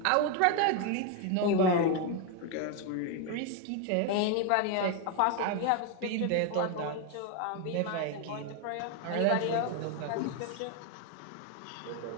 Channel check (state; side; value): different; both; correlation 0.01